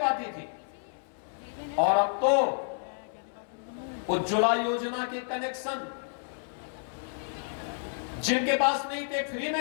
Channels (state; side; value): silent; right; 58 dB below the other